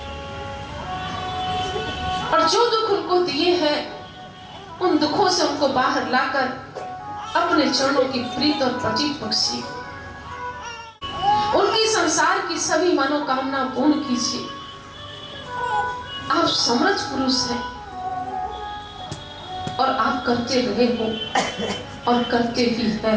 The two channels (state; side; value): identical; both; correlation 1.00